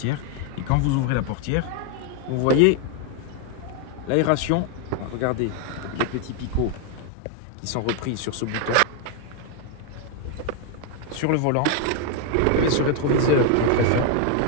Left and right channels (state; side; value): different; both; correlation 0.01